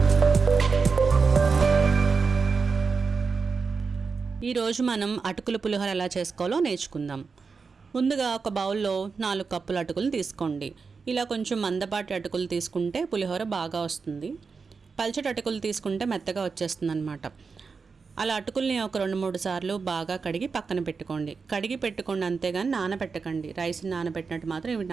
ఈరోజు మనం అటుకుల పులిహోర ఎలా చేసుకోవాలో నేర్చుకుందాం. ముందుగా ఒక బౌల్లో 4 కప్పుల అటుకులు తీసుకోండి. ఇలా కొంచెం మందపాటి అటుకులు తీసుకుంటే పులిహోర బాగా వస్తుంది. పల్చటి అటుకులు తీసుకుంటే మెత్తగా వచ్చేస్తుంది అన్నమాట. అలా అటుకుల్ని ఒక 2-3 సార్లు బాగా కడిగి పక్కన పెట్టుకోండి. కడిగి పెట్టుకోండి అంతేగాని నానబెట్టకండి. రైస్ని నానబెట్టినట్టు మాత్రం ఇవి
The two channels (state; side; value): quieter; left; 5.0 dB